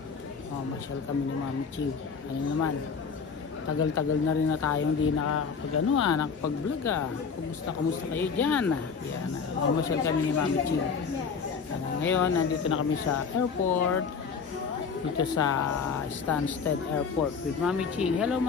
Masyal kami ni Mami Ching. Ano naman, tagal-tagal na rin na tayong di nakapag-vlog Kumusta kayo dyan? Yan, masyal kami ni Mami Ching. Ngayon, nandito na kami sa airport. Dito sa Stansted Airport with Mami Ching. Hello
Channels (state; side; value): quieter; right; 5.7 dB